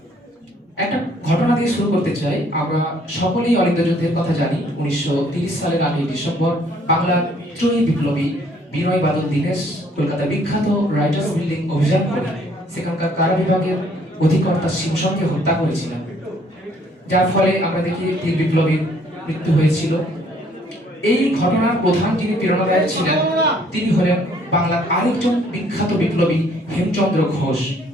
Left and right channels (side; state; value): both; normal; correlation 0.62